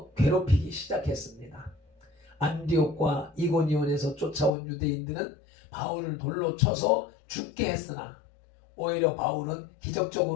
괴롭히기 시작했습니다. 안디옥과 이고니온에서 쫓아온 유대인들은 바울을 돌로 쳐서 죽게 했으나 오히려 바울은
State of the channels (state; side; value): drops out; right; at 4.5 s